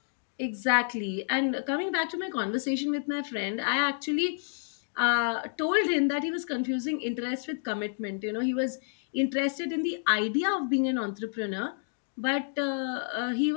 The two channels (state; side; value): silent; right; digital silence